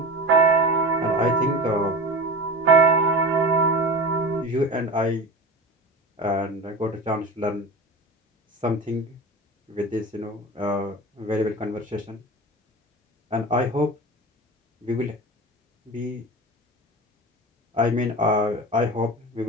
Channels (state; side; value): normal; both; correlation 0.31